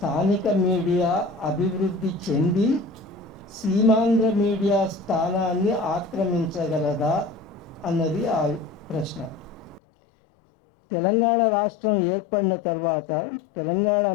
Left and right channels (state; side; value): drops out; right; at 9.8 s